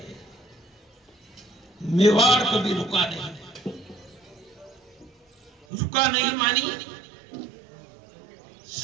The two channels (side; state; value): left; drops out; at 5.7 s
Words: मेवाड़ कभी रुका नहीं मानी।